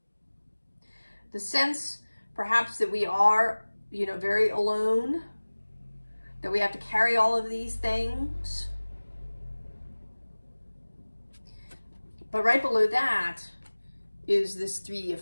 The sense, perhaps, that we are, you know, very alone, that we have to carry all of these things. But right below that is this 3 of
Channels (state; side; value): inverted; both; correlation -1.00